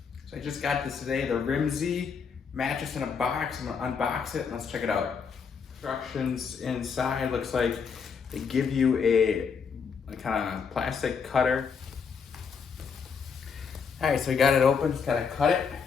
So I just got this today, the Rimensy Mattress in a box. I'm gonna unbox it and let's check it out. Instructions inside, looks like they give you a kind of plastic cutter. All right, so we got it open, just gotta cut it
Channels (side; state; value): right; quieter; 6.0 dB